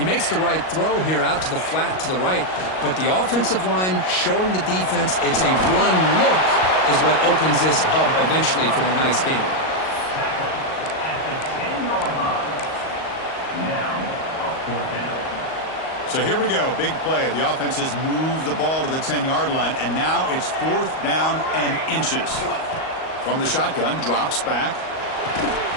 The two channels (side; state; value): right; late; 38 ms